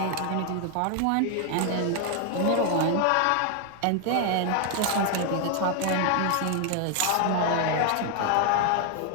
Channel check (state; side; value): different; both; correlation 0.00